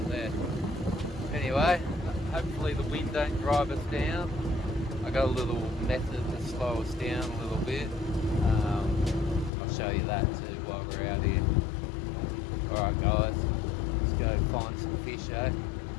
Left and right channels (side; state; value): right; drops out; at 9.5 s